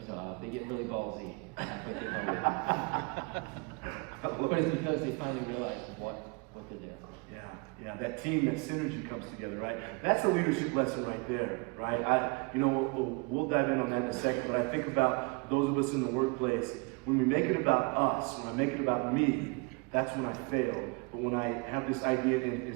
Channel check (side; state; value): left; quieter; 30.3 dB